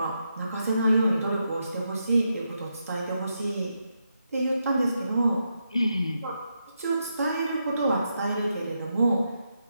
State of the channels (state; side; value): inverted; both; correlation -0.83